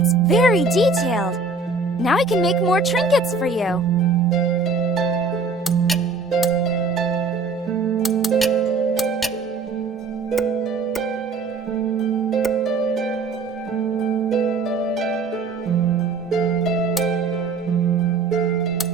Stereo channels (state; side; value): quieter; left; 4.0 dB